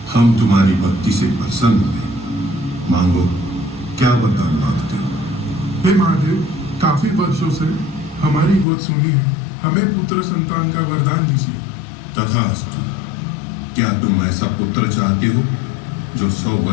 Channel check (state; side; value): drops out; right; at 8.7 s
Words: हम तुम्हारी भक्ति से प्रसन्न हुए। मांगो, क्या वरदान मांगते हो? हे महादेव, काफी वर्षों से हमारी गोद सुनी है, हमें पुत्र संतान का वरदान दीजिए। तथास्तु। क्या तुम ऐसा पुत्र चाहते हो जो 100